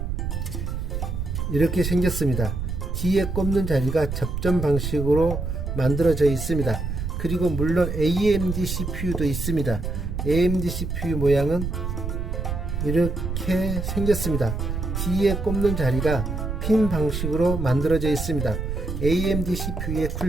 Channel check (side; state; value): right; noise; rumble, 3 dB below the sound